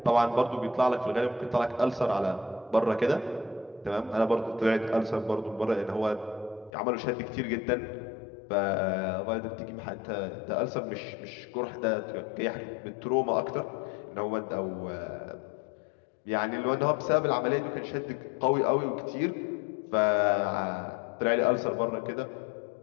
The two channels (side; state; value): right; drops out; at 6.7 s